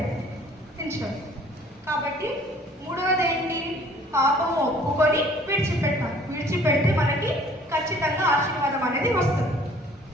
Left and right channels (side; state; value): both; normal; correlation 0.54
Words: కాబట్టి మూడవది ఏంటి? పాపము ఒప్పుకొని విడిచిపెడితే మనకి ఖచ్చితంగా ఆశీర్వాదం అనేది వస్తుంది.